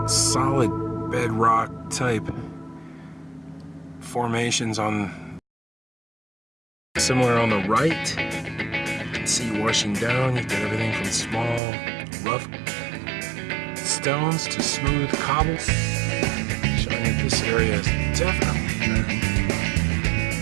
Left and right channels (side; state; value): left; drops out; at 11.6 s